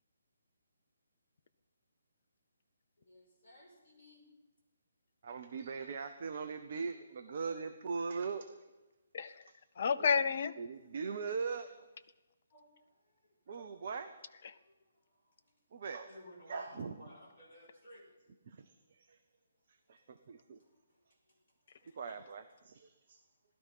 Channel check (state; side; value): inverted; both; correlation -0.75